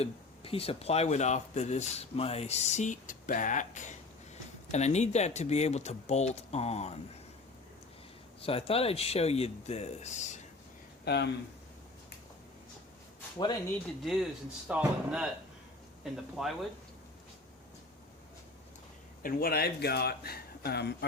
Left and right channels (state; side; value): quieter; right; 3.3 dB